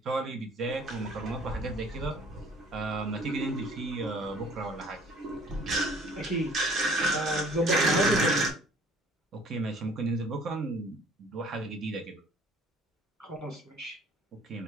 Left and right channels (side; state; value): both; normal; correlation 0.54